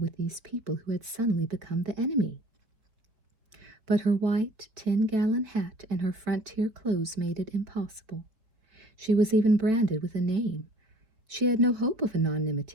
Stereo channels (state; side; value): late; left; 4.3 ms